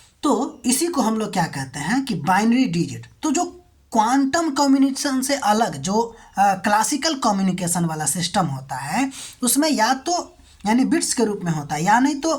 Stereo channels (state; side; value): identical; both; correlation 1.00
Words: तो इसी को हम लोग क्या कहते हैं कि बाइनरी डिजिट। तो जो क्वांटम कम्युनिकेशन से अलग जो क्लासिकल कम्युनिकेशन वाला सिस्टम होता है, उसमें या तो यानी बिट्स के रूप में होता है, या नहीं